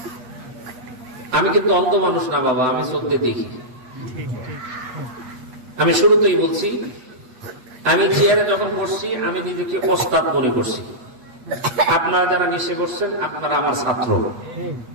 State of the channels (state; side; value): late; left; 8.3 ms